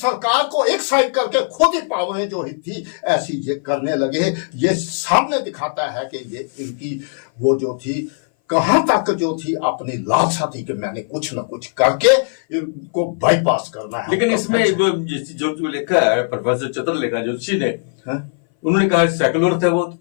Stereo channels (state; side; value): silent; right; 59 dB below the other